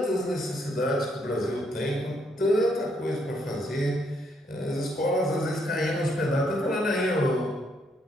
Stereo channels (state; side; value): normal; both; correlation 0.73